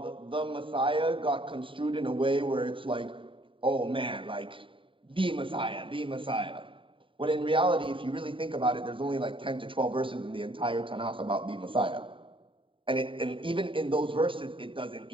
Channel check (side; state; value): left; late; 0.25 ms